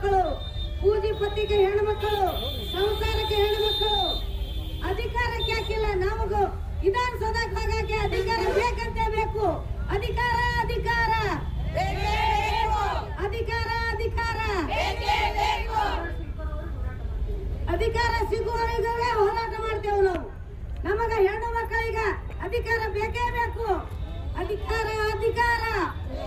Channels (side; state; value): both; identical; correlation 1.00